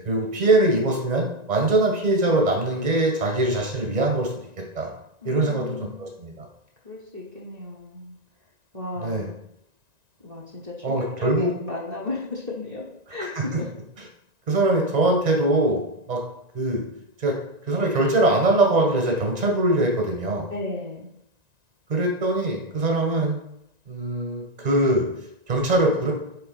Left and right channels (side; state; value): left; late; 1.9 ms